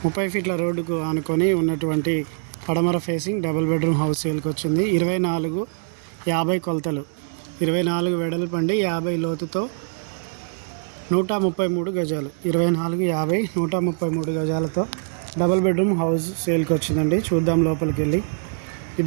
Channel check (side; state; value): left; silent; digital silence